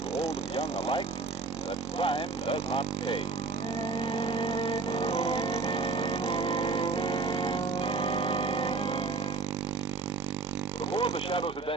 old and young alike that crime does not pay. Before The Shadow's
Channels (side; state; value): left; quieter; 4.3 dB